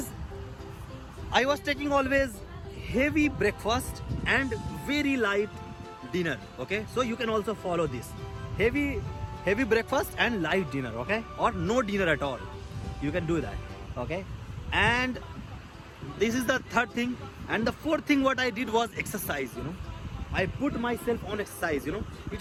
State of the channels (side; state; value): both; identical; correlation 1.00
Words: I was taking always heavy breakfast and very light dinner. Okay, so you can also follow this heavy breakfast and light dinner. Okay, or no dinner at all, you can do that. Okay, and this is the third thing. And the fourth thing what I did was exercise. I put myself on exercise.